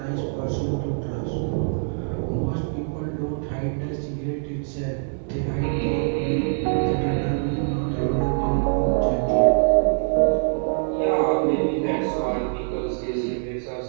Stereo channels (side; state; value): left; silent; digital silence